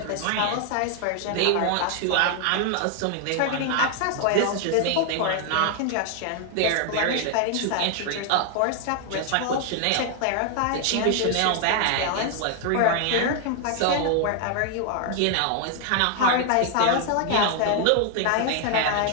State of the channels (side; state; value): both; different; correlation 0.00